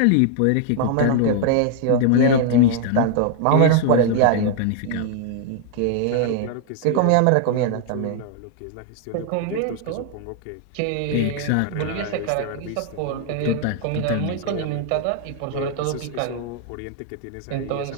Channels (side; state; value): both; different; correlation 0.00